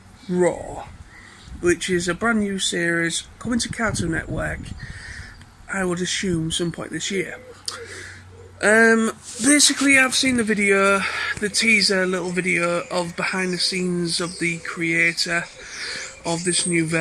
Raw, which is a brand new series coming to Cartoon Network, I would assume some point this year. Basically I've seen the video, the teaser little video of behind the scenes of the creator of this new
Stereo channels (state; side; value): identical; both; correlation 1.00